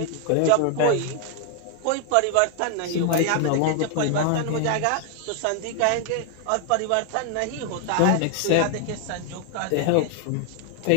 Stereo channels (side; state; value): both; different; correlation 0.00